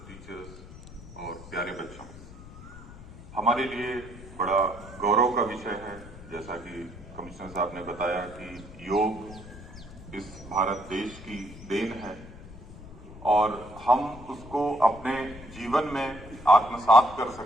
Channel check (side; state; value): left; noise; rumble, 16 dB below the sound